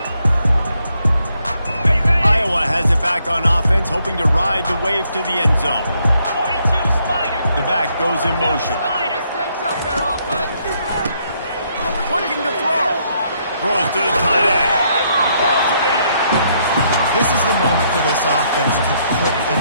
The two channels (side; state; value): both; inverted; correlation -0.73